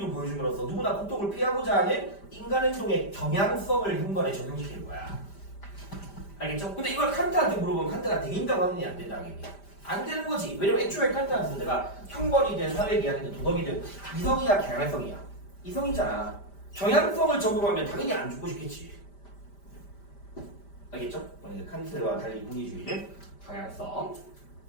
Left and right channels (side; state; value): right; late; 5.1 ms